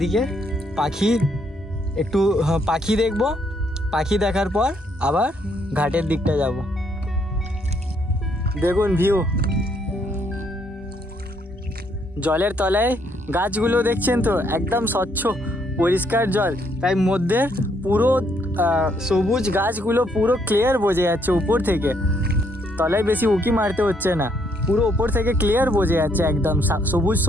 একটু পাখি দেখব, পাখি দেখার পর আবার ঘাটের দিকটা যাব। দেখুন ভিউ, জলের তলায় গাছগুলো দেখছেন তো, একদম স্বচ্ছ পরিষ্কার জল, তাই মধ্যে পুরো সবুজ গাছগুলো পুরো ক্লিয়ার বোঝা যাচ্ছে উপর থেকে। তলায় বেশি উঁকি মারতে হচ্ছে না, পুরো উপর থেকে ক্লিয়ার বোঝা যাচ্ছে, একদম সবুজ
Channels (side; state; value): both; normal; correlation 0.71